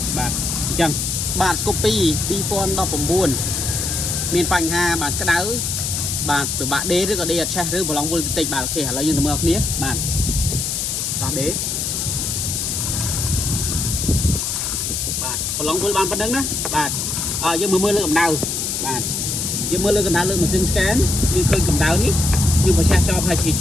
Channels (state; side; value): noise; left; hiss, 1 dB below the sound